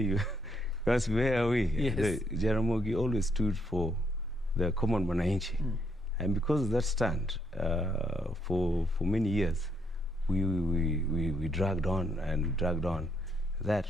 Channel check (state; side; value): normal; both; correlation 0.74